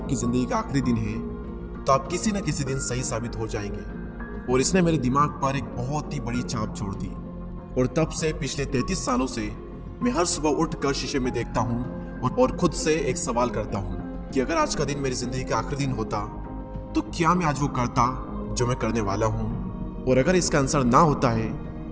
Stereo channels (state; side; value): identical; both; correlation 1.00